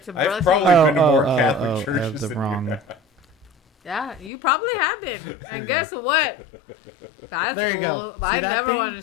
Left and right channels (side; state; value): right; drops out; at 4.3 s